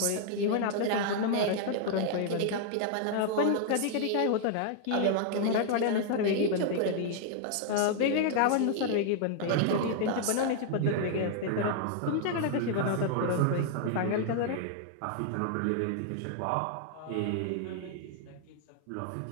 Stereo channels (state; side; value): different; both; correlation 0.00